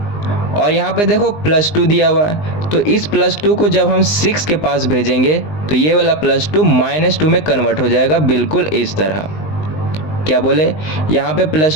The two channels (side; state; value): right; late; 19 ms